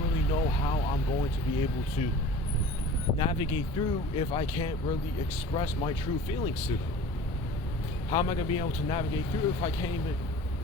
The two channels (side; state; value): both; normal; correlation 0.42